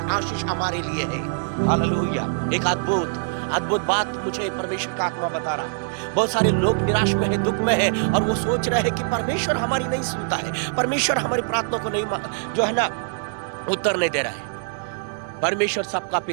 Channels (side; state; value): left; silent; 63 dB below the other